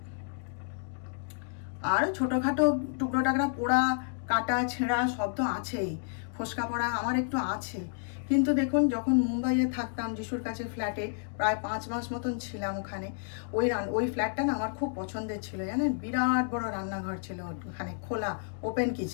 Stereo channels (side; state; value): right; silent; digital silence